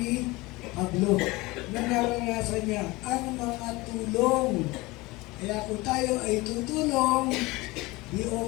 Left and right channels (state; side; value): quieter; right; 22.0 dB